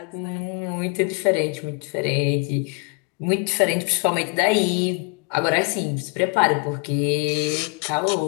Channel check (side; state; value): right; quieter; 33.8 dB